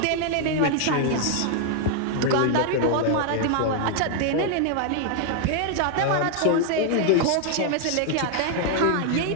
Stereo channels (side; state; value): both; different; correlation 0.00